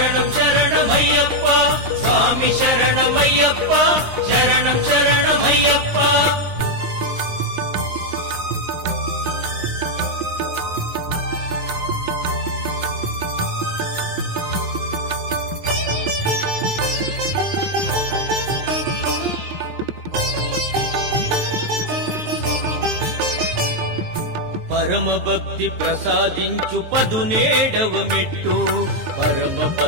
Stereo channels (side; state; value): left; late; 9.7 ms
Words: శరణమయ్యప్ప స్వామి శరణమయ్యప్ప శరణం శరణమయ్యప్ప పరమ భక్తి ప్రసాదించు 17వ మెట్టు పరమ